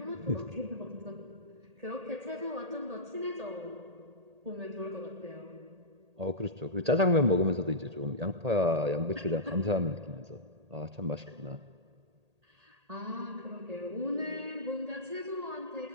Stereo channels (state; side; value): late; left; 1.8 ms